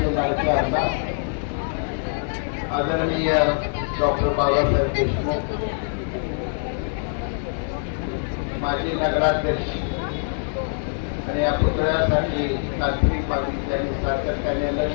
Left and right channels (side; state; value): right; silent; 63 dB below the other